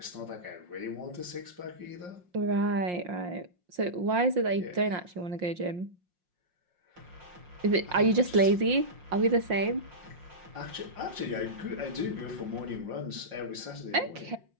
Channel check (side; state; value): left; late; 5.6 ms